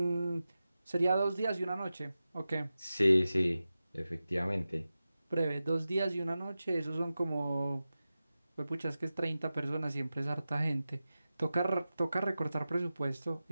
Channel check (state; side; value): inverted; both; correlation -0.94